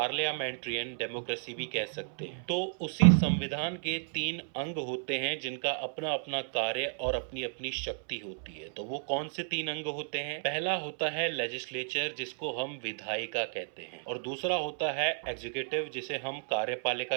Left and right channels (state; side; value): silent; left; 56 dB below the other